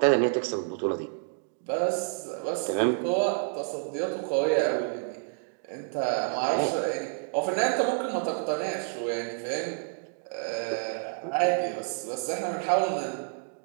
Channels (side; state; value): left; silent; digital silence